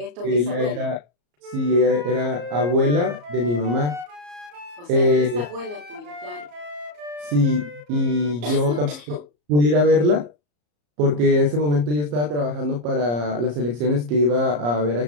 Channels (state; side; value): late; left; 34 ms